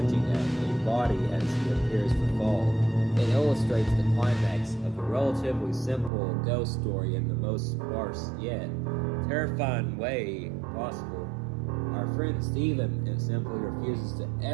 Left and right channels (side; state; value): left; drops out; at 6.1 s